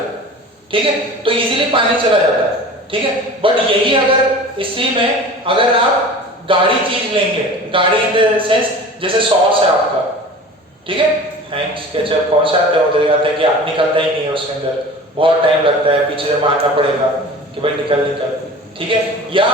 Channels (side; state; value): both; normal; correlation 0.39